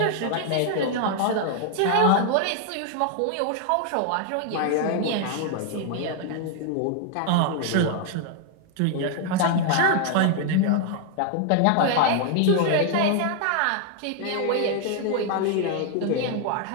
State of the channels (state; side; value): different; both; correlation 0.00